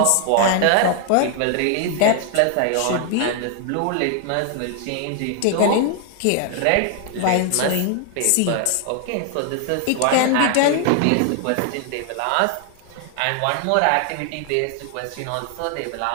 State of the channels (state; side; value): different; both; correlation 0.00